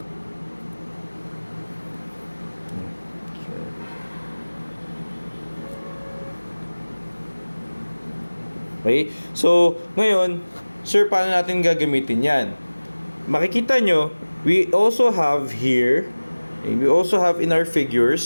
Okay? So, ngayon, sir, paano natin gagamitin yan? Makikita nyo, we also have here, we also have in our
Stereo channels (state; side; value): inverted; both; correlation -1.00